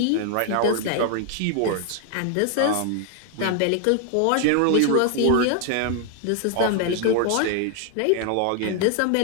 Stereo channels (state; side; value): different; both; correlation 0.00